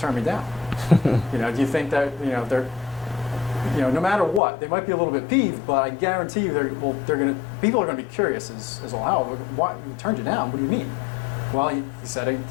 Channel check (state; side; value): drops out; right; at 4.4 s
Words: me down. You know, do you think that, they're, no matter what, they might be a little bit peeved, but I guarantee you people are going to be curious as well. How? Why he turned you down? What do you mean? Well, he said